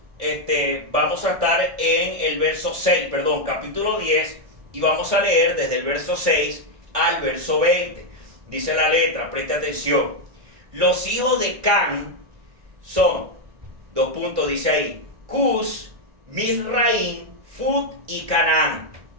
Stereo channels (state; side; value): late; left; 1.5 ms